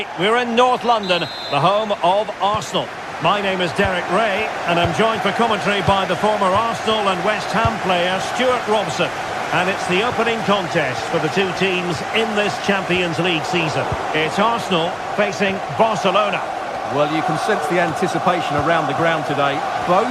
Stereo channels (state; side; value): identical; both; correlation 1.00